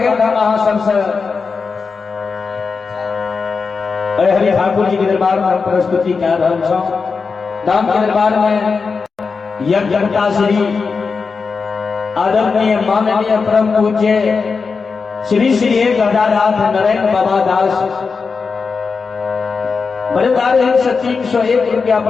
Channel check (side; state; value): right; quieter; 4.9 dB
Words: था महासन से हरि ठाकुर जी के दरबार में हम प्रस्तुति कर रहे हैं। धाम के दरबार में यज्ञता श्री आदरणीय माननीय परम पूज्य श्री श्री 1008 नरेंद्र बाबा दास बड़े 301 रुपया